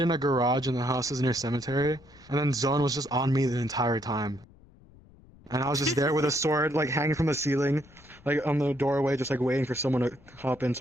a garage in the houses near cemetery, and then Zone was just on me the entire time. And I was just there with a sword, like hanging from the ceiling, like on the doorway, just like waiting for someone to hop in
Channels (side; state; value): left; noise; rumble, 25 dB below the sound